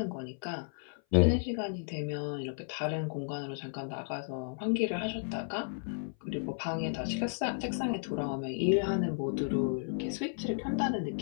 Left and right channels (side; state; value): right; silent; 55 dB below the other